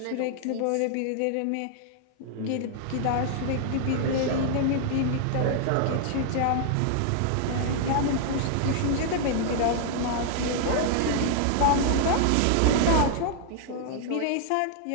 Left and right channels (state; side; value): different; both; correlation 0.00